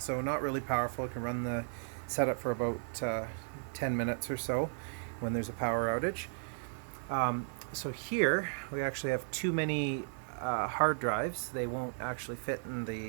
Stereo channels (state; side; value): silent; left; digital silence